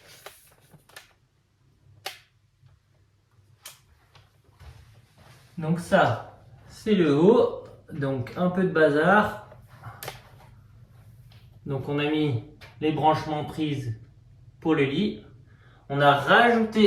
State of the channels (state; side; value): identical; both; correlation 1.00